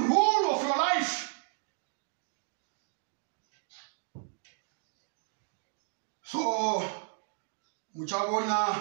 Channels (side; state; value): left; silent; digital silence